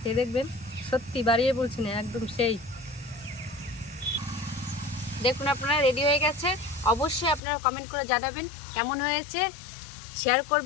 খেয়ে দেখবেন, সত্যি বাড়িয়ে বলছি না, একদম সেই। দেখুন আপনারা রেডি হয়ে গেছে। অবশ্যই আপনারা কমেন্ট করে জানাবেন কেমন হয়েছে। শেয়ার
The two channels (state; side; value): drops out; right; at 7.4 s